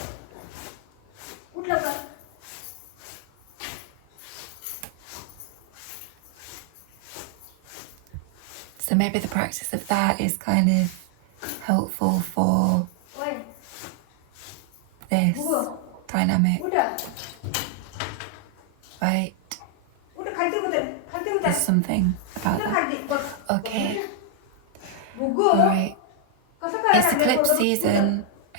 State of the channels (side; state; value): both; different; correlation 0.00